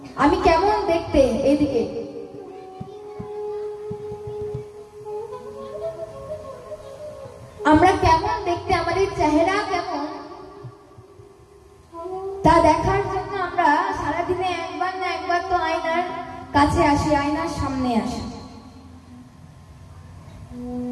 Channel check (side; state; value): both; identical; correlation 1.00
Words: আমি কেমন দেখতে, এদিকে আমরা কেমন দেখতে, আমাদের চেহারা কেমন, তা দেখার জন্য আমরা সারাদিনে একবার না একবার তো আয়নার কাছে আসি, আয়নার সামনে আসি।